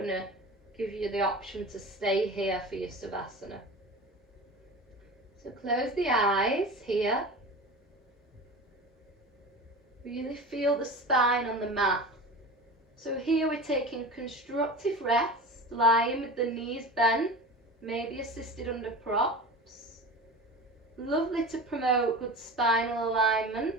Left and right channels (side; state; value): both; normal; correlation 0.32